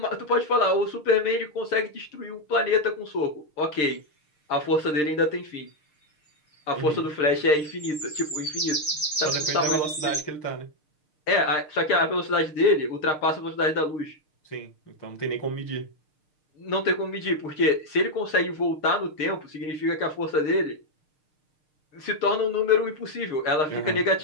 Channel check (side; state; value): right; late; 6.4 ms